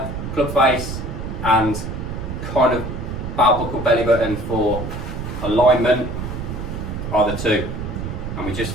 club face and kind of belt buckle belly button for alignment are the two. And we just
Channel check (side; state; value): right; noise; rumble, 6 dB below the sound